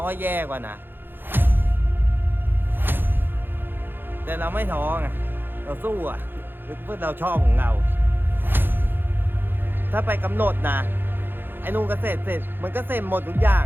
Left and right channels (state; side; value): late; left; 0.099 ms